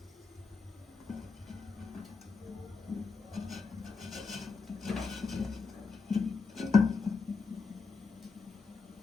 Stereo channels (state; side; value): quieter; right; 4.7 dB